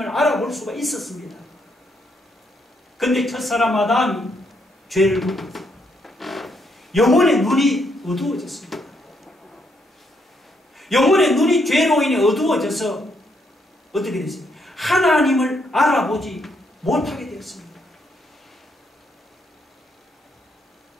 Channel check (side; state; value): both; normal; correlation 0.75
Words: 알아볼 수가 있었습니다. 근데 첫사람 아담이 죄를 묻고 영혼의 눈이 어두워졌습니다. 영혼의 눈이 죄로 인해 어두워져서 어떻게 됐습니까? 하나님을 알아보지 못하게 되었습니다.